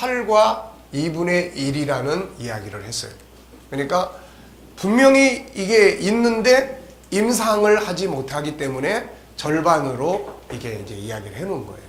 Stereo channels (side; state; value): both; identical; correlation 1.00